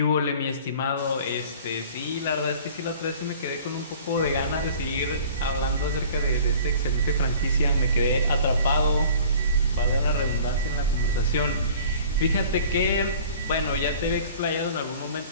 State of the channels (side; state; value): both; inverted; correlation -0.47